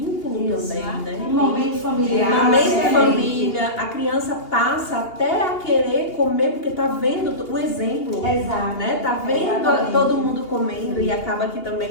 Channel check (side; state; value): right; late; 2.8 ms